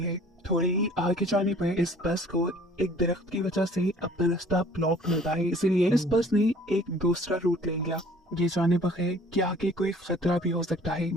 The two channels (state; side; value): normal; both; correlation 0.53